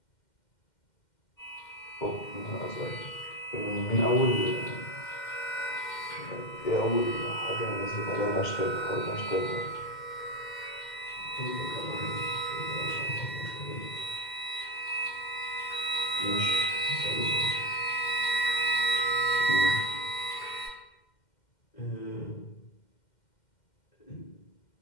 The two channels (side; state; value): right; late; 2.1 ms